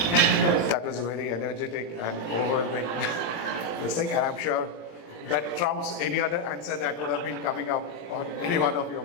That was very energetic and overwhelming this thing, and I'm sure that trumps any other answer that would have been coming up on any one of your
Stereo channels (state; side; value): late; right; 18 ms